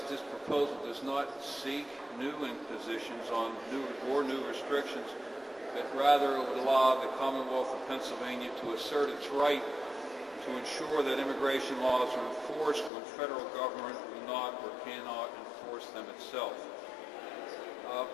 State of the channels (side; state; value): right; drops out; at 12.9 s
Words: this proposal does not seek new impositions on new restrictions, but rather it would allow the Commonwealth of Pennsylvania to assert its right to ensure that immigration laws are enforced when federal government will not or cannot enforce them itself.